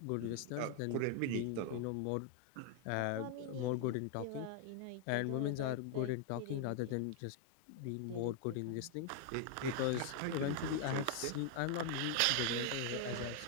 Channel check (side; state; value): both; different; correlation 0.00